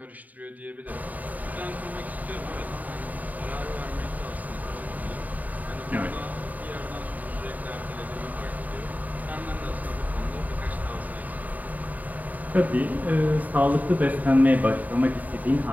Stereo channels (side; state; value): left; late; 0.077 ms